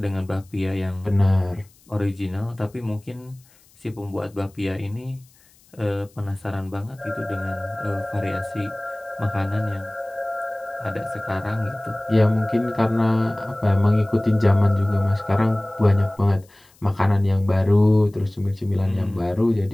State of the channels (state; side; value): noise; left; hiss, 30 dB below the sound